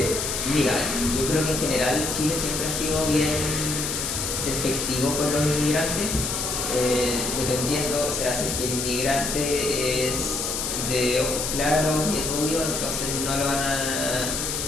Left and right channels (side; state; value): left; noise; hiss, 2 dB below the sound